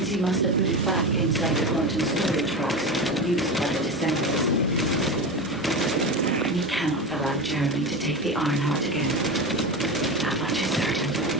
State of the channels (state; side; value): normal; both; correlation 0.23